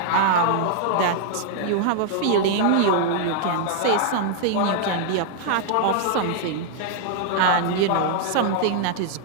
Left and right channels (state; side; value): different; both; correlation 0.00